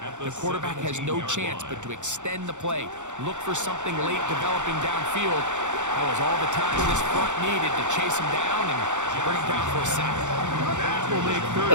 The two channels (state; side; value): late; left; 0.85 ms